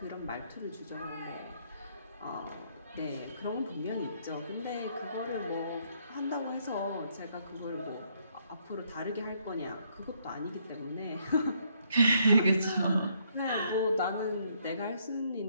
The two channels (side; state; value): both; inverted; correlation -0.70